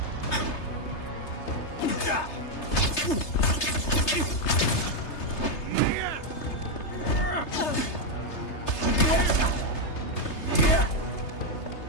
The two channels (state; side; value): late; right; 3.3 ms